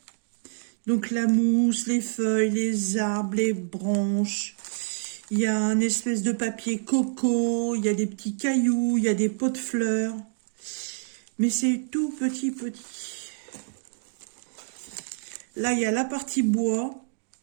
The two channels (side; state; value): left; silent; digital silence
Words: Donc la mousse, les feuilles, les arbres, les branches. Il y a un espèce de papier coco. Il y a des petits cailloux. Il y a des pots de fleurs. Mais c'est tout petit. Là, il y a la partie bois.